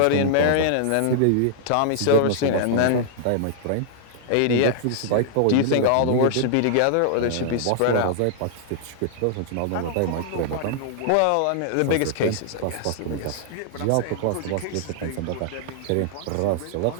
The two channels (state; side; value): different; both; correlation -0.01